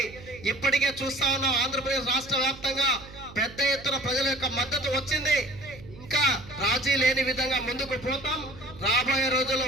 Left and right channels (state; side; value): noise; right; hum, 18 dB below the sound